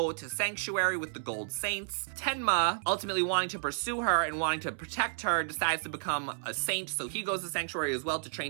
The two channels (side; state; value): left; silent; 57 dB below the other